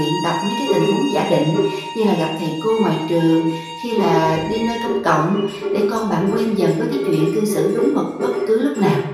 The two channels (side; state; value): both; identical; correlation 1.00